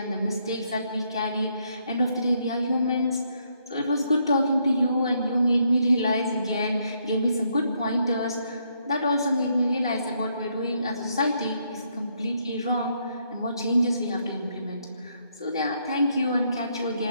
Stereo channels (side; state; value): both; inverted; correlation -0.74